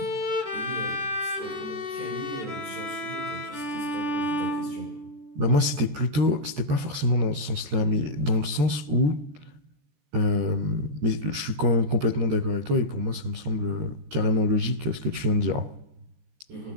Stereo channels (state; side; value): late; left; 14 ms